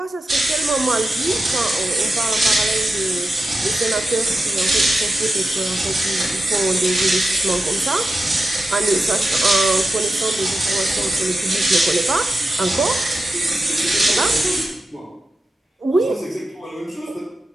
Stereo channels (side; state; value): both; normal; correlation 0.91